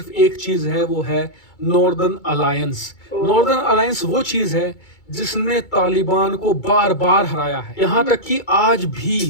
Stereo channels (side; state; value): right; late; 2.2 ms